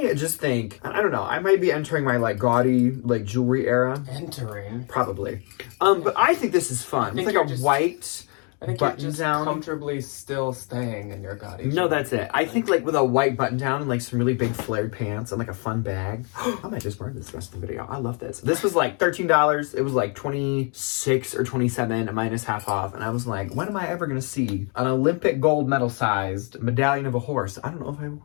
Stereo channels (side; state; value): right; quieter; 36.7 dB